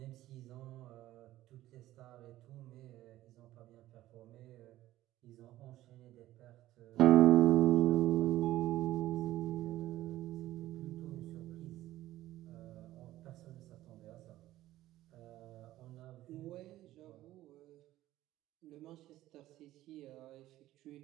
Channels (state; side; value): quieter; left; 15.0 dB